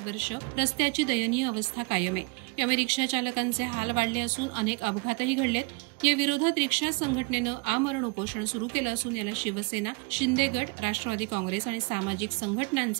वर्ष रस्त्याची दयनीय अवस्था कायम आहे. यामुळे रिक्षा चालकांचे हाल वाढले असून अनेक अपघातही घडलेत. या विरोधात रिक्षा संघटनेनं आमरण उपोषण सुरू केलं असून याला शिवसेना, शिंदे गट, राष्ट्रवादी काँग्रेस आणि सामाजिक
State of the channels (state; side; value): quieter; left; 28.8 dB